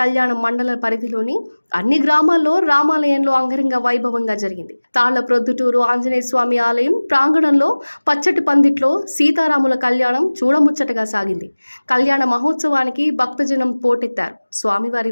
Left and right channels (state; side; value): inverted; both; correlation -1.00